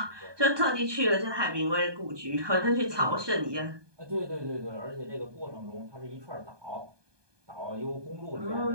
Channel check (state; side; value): late; left; 1.2 ms